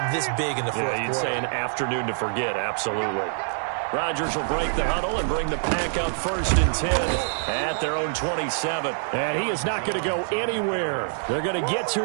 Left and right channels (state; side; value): silent; left; 62 dB below the other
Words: this big in the fourth quarter. Yeah, you'd say an afternoon to forget, absolutely. Rodgers will break the huddle and bring the Pack up 1st and 10 at their own 27. And he is not going to go anywhere. They're going to get